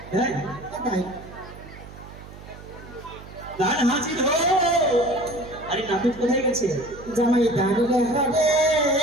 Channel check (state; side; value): noise; right; hum, 16 dB below the sound